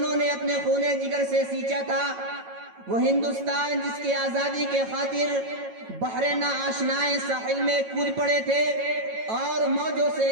نے اپنے خون جگر سے سینچا تھا، وہ ہندوستان جس کی آزادی کے خاطر بحر ناآشنائے ساحل میں کود پڑے تھے اور موجوں سے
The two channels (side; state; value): left; late; 9.0 ms